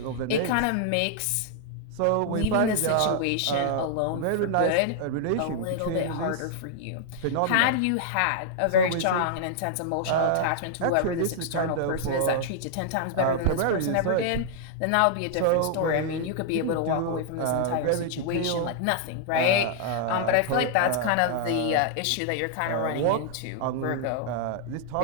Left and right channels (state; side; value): different; both; correlation -0.01